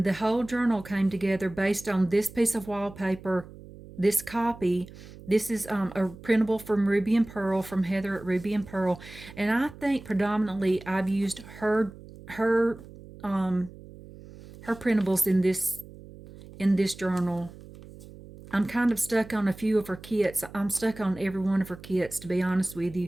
the whole journal came together based on this piece of wallpaper, this copy. This is a printable from Ruby and Pearl, from Heather at Ruby and Pearl, and I think predominantly I've used her printables in this journal. I'm kind of stuck on a few of her kits. I'm stuck on every one of her kits, to be honest with you.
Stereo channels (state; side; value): noise; right; hum, 18 dB below the sound